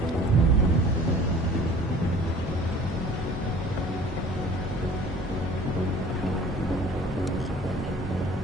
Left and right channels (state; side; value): normal; both; correlation 0.48